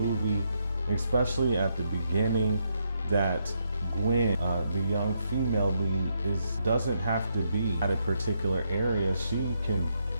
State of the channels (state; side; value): inverted; both; correlation -0.78